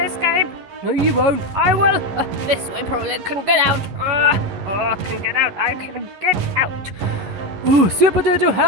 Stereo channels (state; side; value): late; left; 11 ms